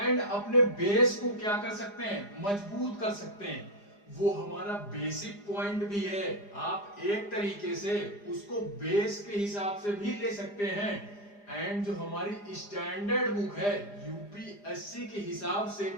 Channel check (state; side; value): late; right; 4.9 ms